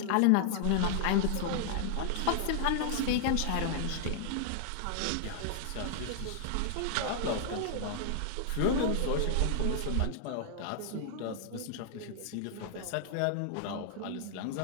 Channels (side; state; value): both; different; correlation -0.01